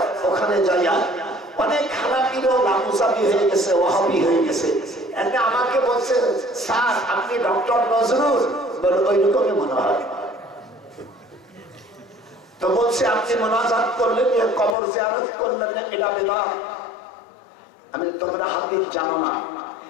ওখানে যাইয়া অনেক হানাফিরও লামুসাবি হয়ে গেছে, ওয়াহাবি হয়ে গেছে। এতে আমাকে বলছে স্যার আপনি ডক্টর নজরুল, বলে ওই রকমই মনে হয়। তো বলছে আপনি মুনাজাত করলেন, কবর জিয়ারত করলেন, এটা বিদআত। আমি তোমরা হাদিস জানো না,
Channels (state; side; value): drops out; right; at 14.8 s